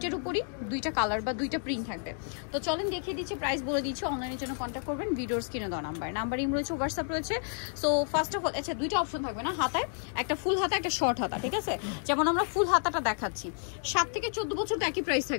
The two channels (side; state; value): right; silent; 57 dB below the other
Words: উপরই দুইটা কালার বা দুইটা প্রিন্ট থাকবে। তো চলেন দেখিয়ে দিচ্ছি, প্রাইস বলে দিচ্ছি। অনলাইনের জন্য কন্ট্যাক্ট করবেন ভিডিওর স্ক্রিনে দেওয়া নাম্বার ইম রয়েছে, হোয়াটসঅ্যাপ রয়েছে। সো ফার্স্ট অফ অল আচ্ছা দুইটা অপশন থাকবে না, হাতায় একটা ফুল হাতা একটা শর্ট হাতা, ঠিক আছে? যেমন আমরা ফুল হাতাটা দেখাচ্ছি, 7 থেকে 14 বছর তো একই প্রাইস